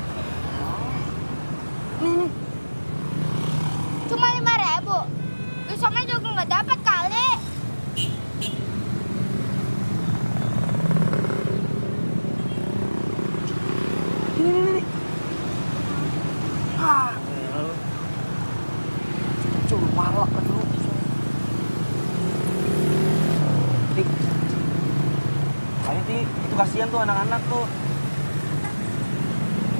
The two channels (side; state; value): both; inverted; correlation -1.00